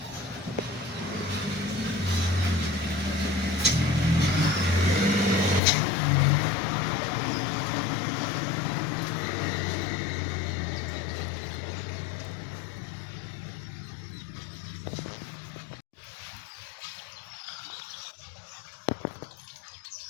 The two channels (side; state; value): right; drops out; at 5.6 s